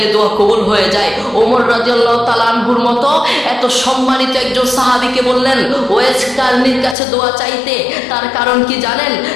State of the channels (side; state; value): right; drops out; at 7.0 s